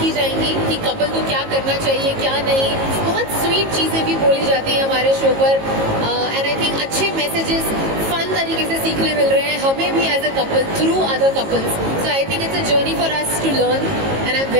जाएंगी कि कपल को क्या करना चाहिए क्या नहीं। बहुत स्वीट चीजें भी बोली जाती हैं हमारे शो पर एंड आई थिंक अच्छे मैसेजेस फन तरीके से सीखने मिल रहे हैं हमें भी as a couple through other couples. So I think it's a journey for us to learn and I am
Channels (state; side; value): late; left; 18 ms